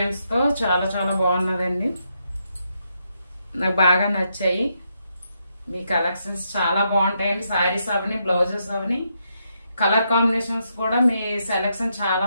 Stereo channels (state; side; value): inverted; both; correlation -0.80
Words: తో చాలా చాలా బాగున్నదండి. నాకు బాగా నచ్చాయి. మీ కలెక్షన్స్ చాలా బాగుంటాయండి. శారీస్ అవని, బ్లౌజెస్ అవని, కలర్ కాంబినేషన్స్ కూడా మీ సెలెక్షన్ చాలా